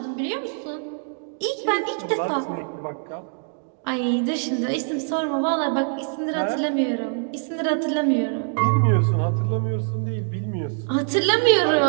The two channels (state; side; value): silent; left; 63 dB below the other